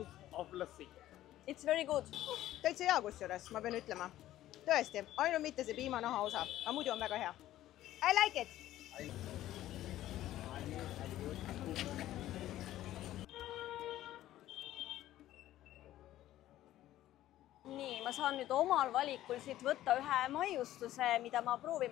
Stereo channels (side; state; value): right; quieter; 13.9 dB